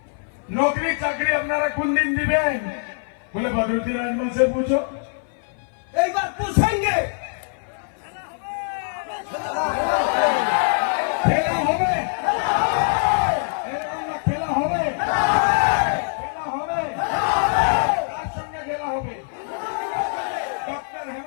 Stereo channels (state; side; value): silent; right; 58 dB below the other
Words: नौकरी चाकरी अपनारा कुन दिन दिबेन बोले बदरुद्दीन आजमल से पूछो एक बार पूछेंगे खेला होबे खेला होबे কার সঙ্গে খেলা হবে ডক্টর